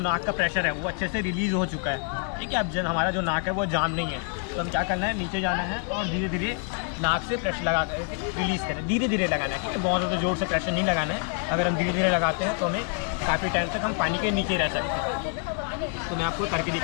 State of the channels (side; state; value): right; quieter; 36.2 dB